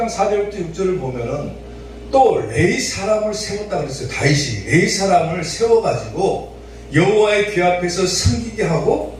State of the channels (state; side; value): identical; both; correlation 1.00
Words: 4절부터 6절을 보면은 또 레위 사람을 세웠다 그랬어요. 다윗이 레위 사람을 세워가지고 여호와의 귀 앞에서 섬기게 하고